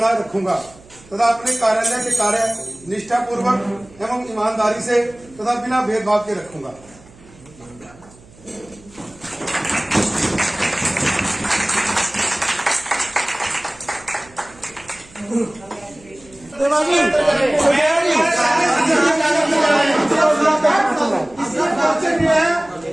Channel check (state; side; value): noise; right; hum, 25 dB below the sound